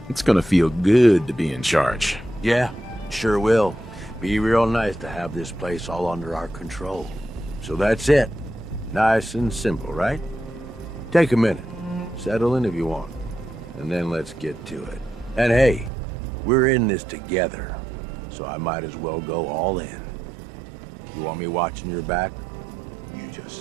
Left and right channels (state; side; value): drops out; left; at 15.9 s